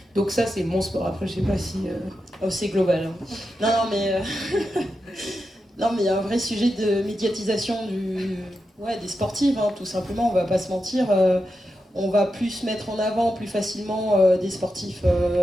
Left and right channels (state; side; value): normal; both; correlation 0.88